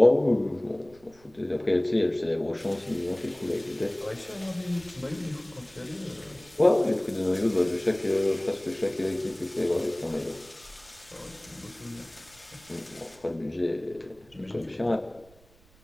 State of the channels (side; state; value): right; noise; rumble, 27 dB below the sound